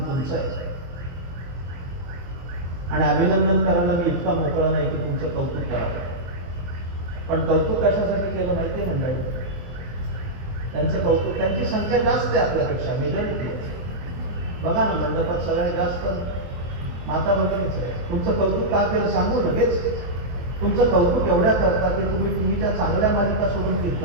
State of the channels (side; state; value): left; late; 23 ms